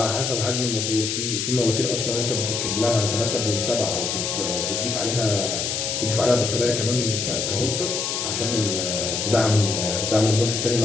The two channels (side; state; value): left; noise; hiss, 1 dB below the sound